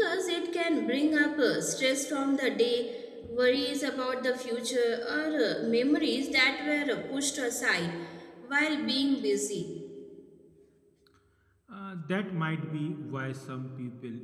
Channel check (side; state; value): both; identical; correlation 1.00